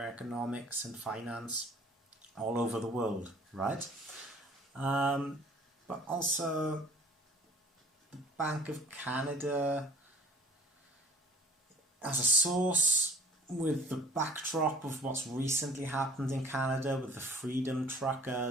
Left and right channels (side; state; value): both; normal; correlation 0.49